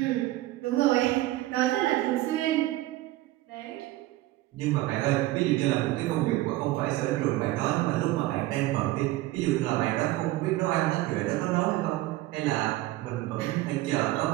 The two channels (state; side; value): quieter; left; 17.1 dB